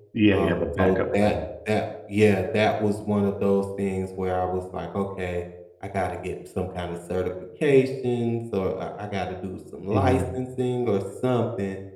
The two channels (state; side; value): identical; both; correlation 1.00